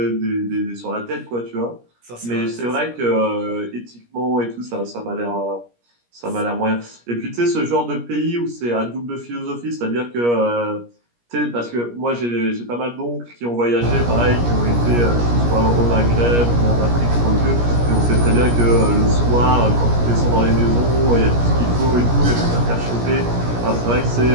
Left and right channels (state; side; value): late; left; 17 ms